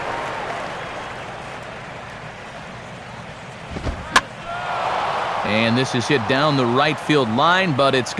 And this is hit down the right field line, but it's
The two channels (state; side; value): identical; both; correlation 1.00